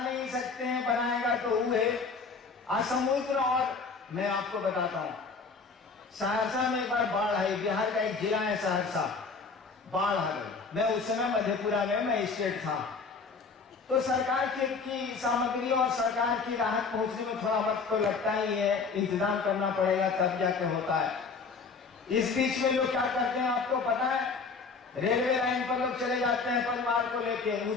सकते हैं, बनाएगा तो वो है असमुद्र। और मैं आपको बताता हूं, सहरसा में एक बार बाढ़ आई, बिहार का एक जिला है सहरसा, बाढ़ आ गई। मैं उस समय मधेपुरा में मैं स्टेट था, तो सरकार की सामग्री और सरकार की राहत पहुंचने में थोड़ा वक्त तो लगता ही है, इंतजाम करना पड़ेगा तब जाके होता है। इस बीच में लोग क्या करते हैं आपको पता है? रेलवे लाइन पर लोग चले जाते हैं परिवार को लेके,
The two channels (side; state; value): right; quieter; 4.7 dB